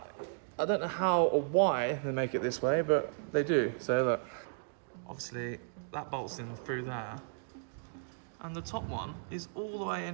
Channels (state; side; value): silent; left; digital silence